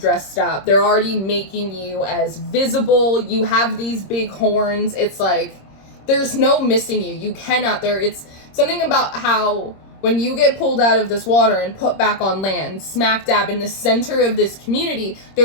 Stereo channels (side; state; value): right; late; 26 ms